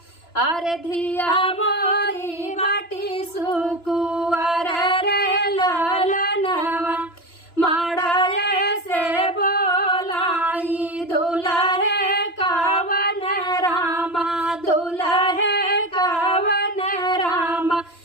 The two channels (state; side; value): late; right; 2.9 ms